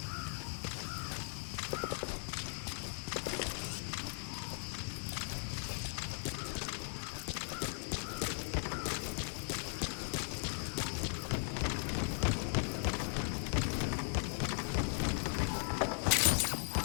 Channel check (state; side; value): silent; right; 52 dB below the other